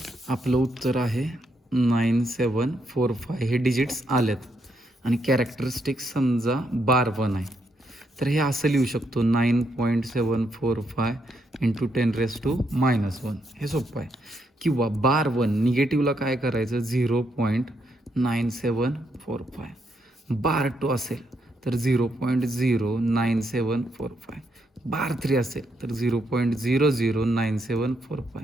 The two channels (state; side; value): normal; both; correlation 0.77